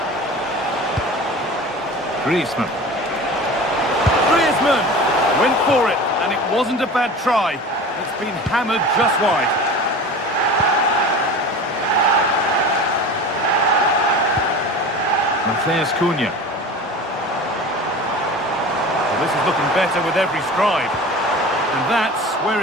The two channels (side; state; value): both; normal; correlation 0.35